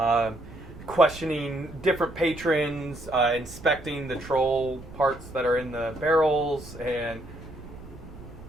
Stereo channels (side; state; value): right; noise; rumble, 16 dB below the sound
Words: Questioning different patrons, inspecting the troll parts that are in the barrels, and...